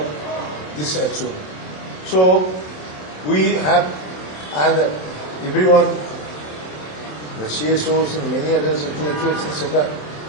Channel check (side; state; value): right; late; 27 ms